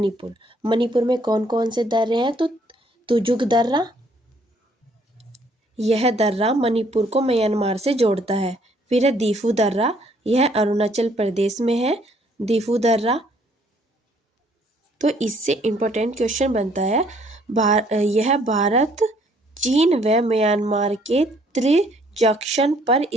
में कौन कौन से दर्रे हैं। तो तुजुक दर्रा, यह दर्रा मणिपुर को म्यांमार से जोड़ता है। फिर है दीफू दर्रा, यह अरुणाचल प्रदेश में है। दीफू दर्रा, तो इससे इम्पोर्टेंट क्वेश्चन बनता है, यह भारत, चीन व म्यांमार के त्रिजंक्शन पर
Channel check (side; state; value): both; normal; correlation 0.64